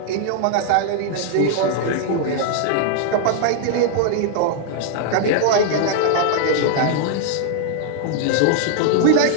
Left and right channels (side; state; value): both; different; correlation 0.00